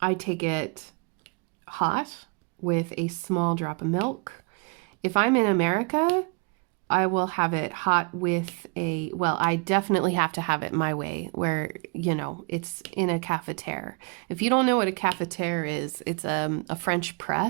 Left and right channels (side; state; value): left; quieter; 32.4 dB